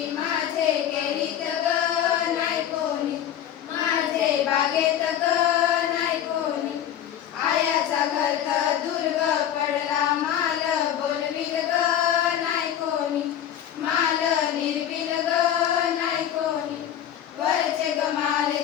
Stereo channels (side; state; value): right; quieter; 10.4 dB